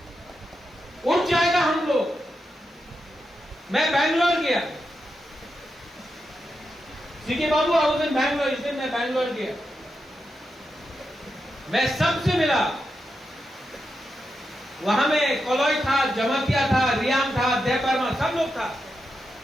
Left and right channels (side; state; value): both; normal; correlation 0.87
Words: हम लोग। मैं बैंगलोर गया, CK Babu house in Bangalore, इस दिन मैं बैंगलोर गया, मैं सबसे मिला। वहां में कॉलोई था, जमातिया था, रियाम था, देव बर्मा, सब लोग था।